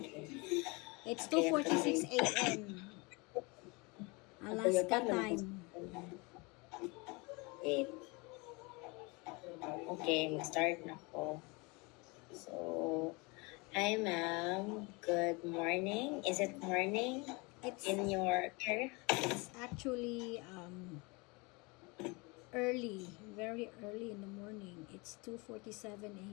Okay, actually, 2:46 a.m. ako yung Alaska paano time. wait. Okay, mag-start na ako. So, hi ma'am, good morning. Is it morning It's in your area? it's actually early, very early in the morning. It's 2:47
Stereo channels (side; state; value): right; quieter; 27.5 dB